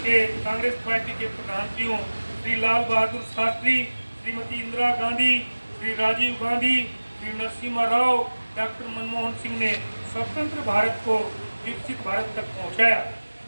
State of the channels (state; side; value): inverted; both; correlation -1.00